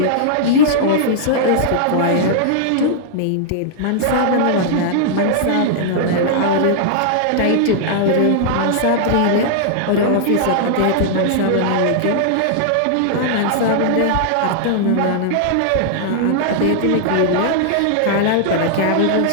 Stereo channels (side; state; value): both; different; correlation -0.01